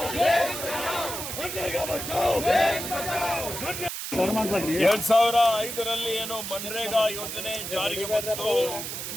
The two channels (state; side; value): noise; right; hiss, 6 dB below the sound